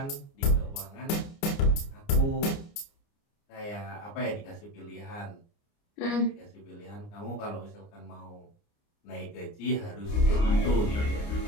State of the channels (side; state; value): right; late; 29 ms